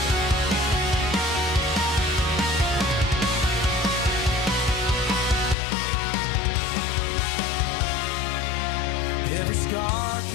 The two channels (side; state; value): right; drops out; at 5.6 s